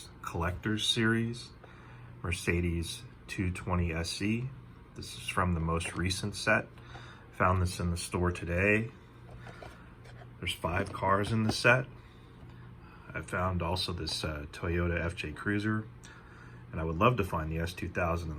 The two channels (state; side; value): identical; both; correlation 1.00